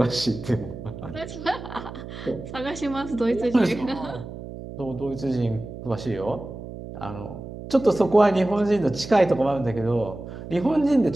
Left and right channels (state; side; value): noise; right; hum, 11 dB below the sound